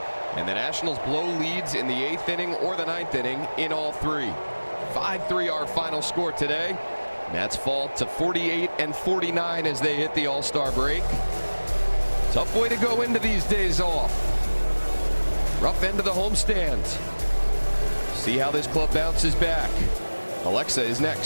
and the Nationals blow leads in the 8th inning or the 9th inning in all 3. 5-3 our final score today. Nats fall to 48 and 49 as they hit the All-Star break. Tough way to go into these days off. Rough end of the homestand. See how this club bounces back. Alexa is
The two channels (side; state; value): both; inverted; correlation -1.00